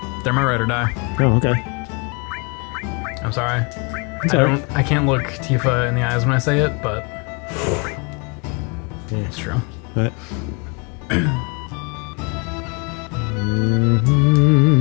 They're my ride or die. Oh, okay. I'm sorry. I can't look Tifa in the eyes when I say it, but yeah. It's true. What?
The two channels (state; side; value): quieter; right; 32.8 dB